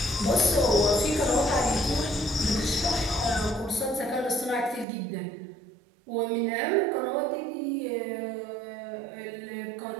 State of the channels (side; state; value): left; drops out; at 4.9 s